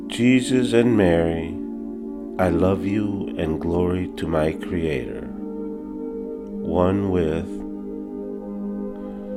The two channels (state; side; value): identical; both; correlation 1.00